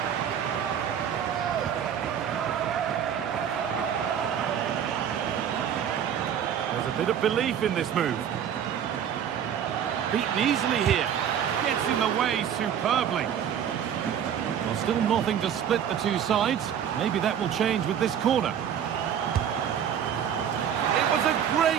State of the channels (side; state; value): left; quieter; 8.9 dB